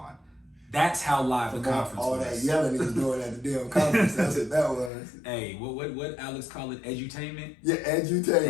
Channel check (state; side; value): drops out; right; at 4.9 s